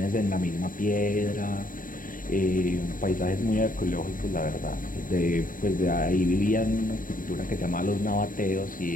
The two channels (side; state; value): right; late; 0.40 ms